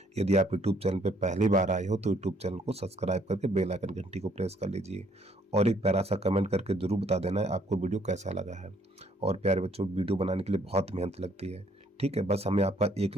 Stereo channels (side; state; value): both; normal; correlation 0.65